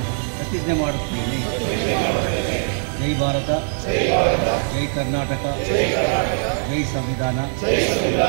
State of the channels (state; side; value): silent; left; digital silence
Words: ಪ್ರತಿಜ್ಞೆ ಮಾಡುತ್ತೇನೆ. ಜೈ ಭಾರತ, ಜೈ ಕರ್ನಾಟಕ, ಜೈ ಸಂವಿಧಾನ, ಜೈ